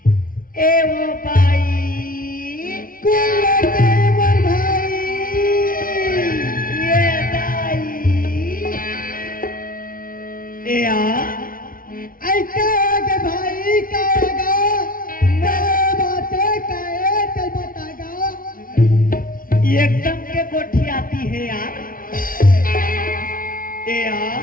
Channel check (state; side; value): late; right; 0.41 ms